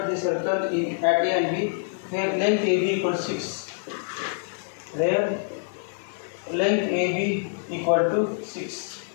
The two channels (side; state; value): right; silent; digital silence